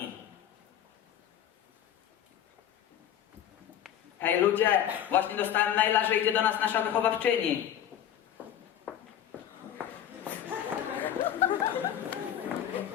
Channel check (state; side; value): quieter; right; 10.2 dB